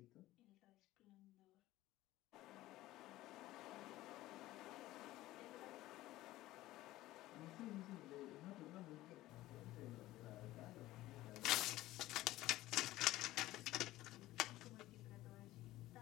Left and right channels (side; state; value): right; quieter; 16.4 dB